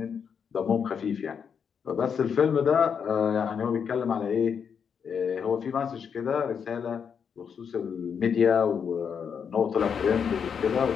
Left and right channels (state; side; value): quieter; right; 7.0 dB